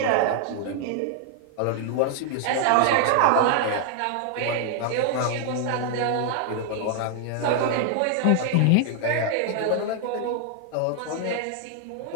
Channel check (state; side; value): different; both; correlation 0.00